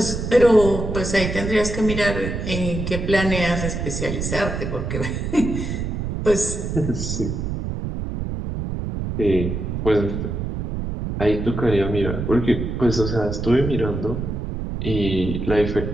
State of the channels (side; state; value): right; noise; rumble, 4 dB below the sound